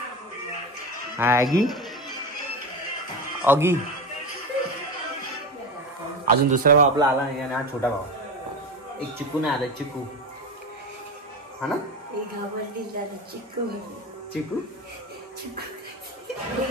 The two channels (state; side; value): normal; both; correlation 0.23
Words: हा आगी ऑगी. अजून दुसरा भाव आपला आला नाही आणि हा छोटा भाव. एक चिकू नाही आला चिकू हा ना. एक घाबरली दादा चिक्कू. चिकू